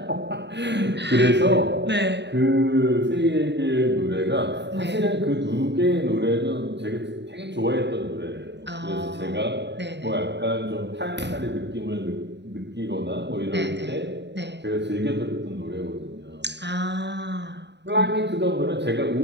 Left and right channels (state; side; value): late; left; 0.51 ms